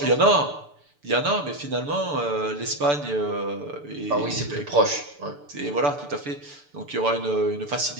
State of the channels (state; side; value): late; left; 6.8 ms